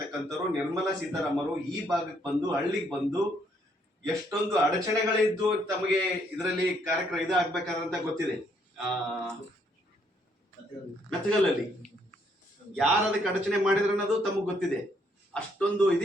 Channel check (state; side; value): normal; both; correlation 0.70